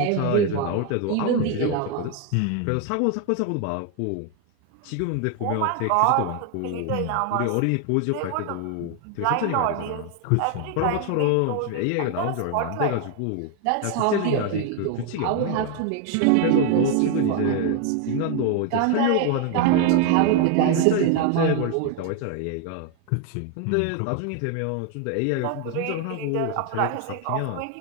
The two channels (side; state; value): both; different; correlation 0.01